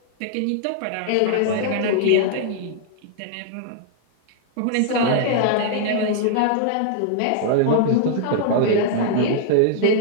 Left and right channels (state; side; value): different; both; correlation -0.01